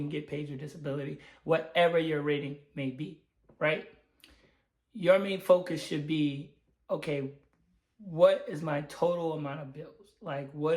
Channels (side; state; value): both; identical; correlation 1.00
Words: get paid your disability, whatever your rating may be, right? Your main focus should be, okay, what is my total amount of bills?